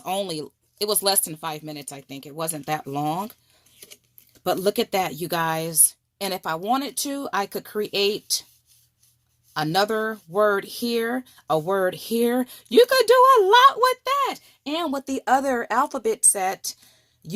it was less than 5 minutes, I think. It wasn't that long. But look at that, you guys. And if I wanted to, I could create another word here, a word here. You could do a lot with that. And with the other alphabet set,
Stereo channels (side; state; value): both; identical; correlation 1.00